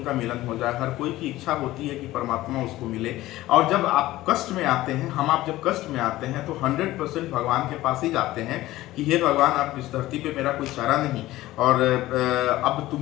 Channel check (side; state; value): right; quieter; 16.5 dB